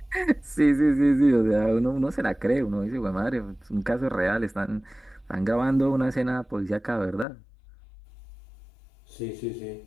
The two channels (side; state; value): right; drops out; at 7.2 s